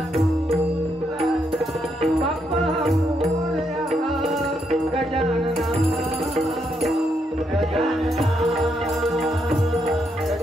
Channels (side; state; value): both; normal; correlation 0.78